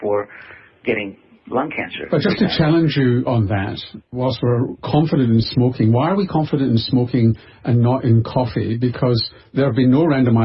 for getting lung cancer. But just to challenge you on that, whilst we're confident in smoking, why are we confident in smoking and not in coffee? Because there have been no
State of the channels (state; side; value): identical; both; correlation 1.00